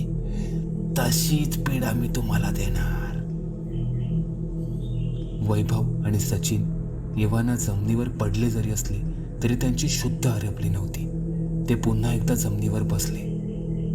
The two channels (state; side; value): identical; both; correlation 1.00